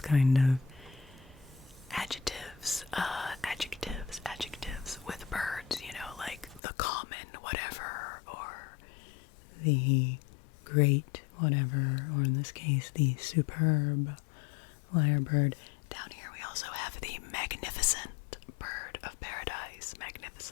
kind of adjectives with birds, you know, like the common whatever, or the great whatever, or in this case, the superb lyrebird. Down here we also have the magnificent bird of paradise.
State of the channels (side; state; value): right; drops out; at 6.6 s